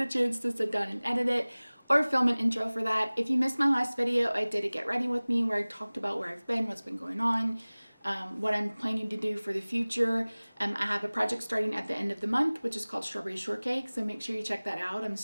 a chance to sit down and edit it or film an intro for that. If you missed my last video, I did a Get Ready With Me where I talked about where I've been, what's been going on, what I'm planning to do for the future. I have a project starting at the end of the month, which is called Strawberry Shortcake, so make sure you check that out. I'm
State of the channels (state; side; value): inverted; both; correlation -1.00